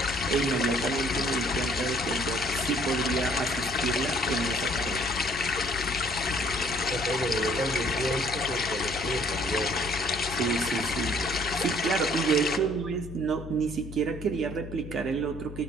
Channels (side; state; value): left; noise; hum, 12 dB below the sound